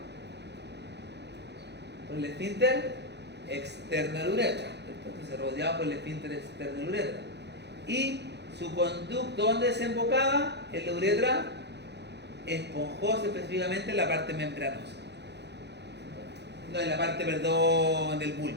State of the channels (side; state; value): left; late; 0.50 ms